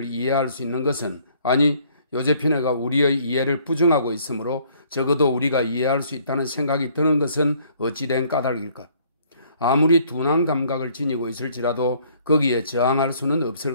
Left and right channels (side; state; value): both; inverted; correlation -0.62